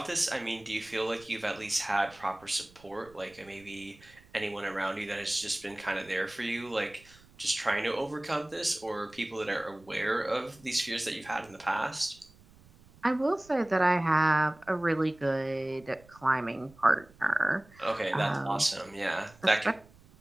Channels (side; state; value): right; noise; rumble, 26 dB below the sound